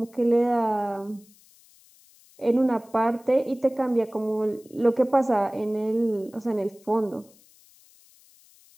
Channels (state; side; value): noise; left; hiss, 28 dB below the sound